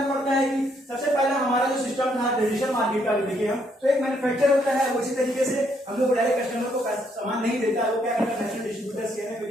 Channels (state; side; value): normal; both; correlation 0.72